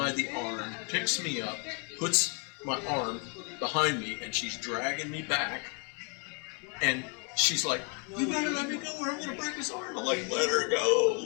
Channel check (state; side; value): quieter; right; 34.9 dB